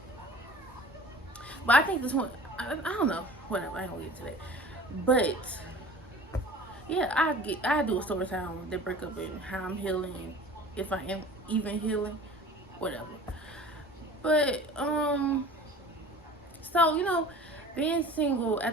But I think this one, I don't know, whatever. I ain't gonna get into that. But yeah, I do a story time on the breakup and how I'm healing, if I am even healing, whatever. But so being single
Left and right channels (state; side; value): normal; both; correlation 0.43